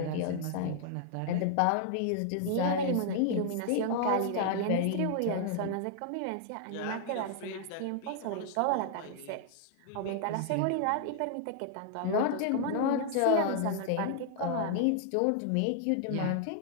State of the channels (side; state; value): both; different; correlation 0.00